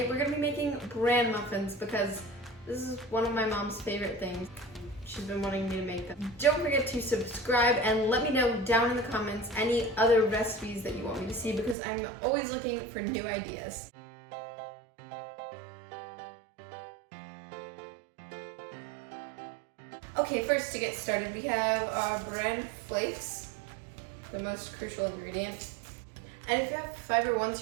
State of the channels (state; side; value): drops out; left; at 11.8 s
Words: we're going to be making Bran Muffins because this is one of my mom's favorite things. She's been wanting me to make them. Don't forget to subscribe and let me know down in the comments any other recipes that you want me to see because I'm always looking for new ideas. Okay, first to get started we have our Bran Flakes, the most crucial ingredient. And if you have Fiber One